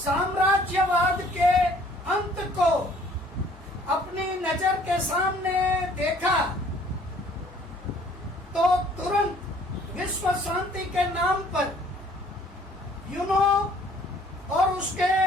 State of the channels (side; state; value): both; normal; correlation 0.58